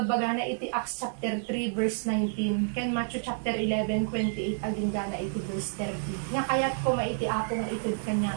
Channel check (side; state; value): left; silent; digital silence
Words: na iti Acts chapter 3 verse 19, ken Matthew chapter 11, 28, aging gana iti verse 30. Nga kaya't ko maiti apo nga itid